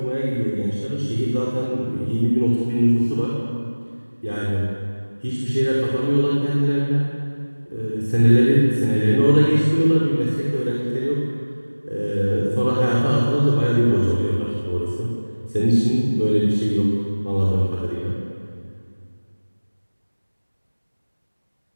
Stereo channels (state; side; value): inverted; both; correlation -1.00